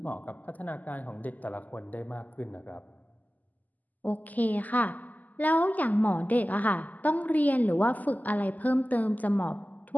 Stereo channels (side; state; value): right; late; 0.080 ms